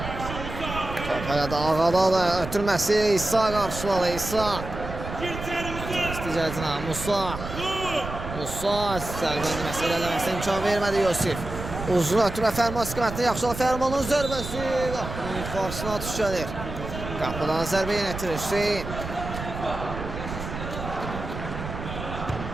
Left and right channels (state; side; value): noise; right; rumble, 8 dB below the sound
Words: Top da Ağada da ötürməsi İsa qarşıladı. İsa. İsticəcinə Musa. Sərbəndi məsələməsi imkan vermədi Yusif. Uzun ötürmə Fərman istiqamətində yaxşı Fərmanın zərbəsi. Qapının qarşısına düşəlir. Qapıdan zərbə yenə etirir Hüseyin.